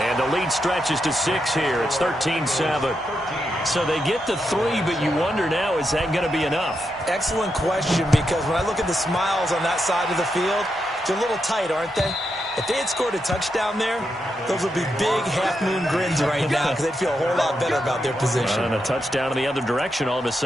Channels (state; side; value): normal; both; correlation 0.84